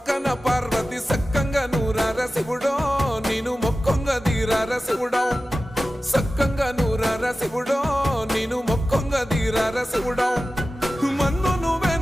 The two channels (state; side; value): normal; both; correlation 0.95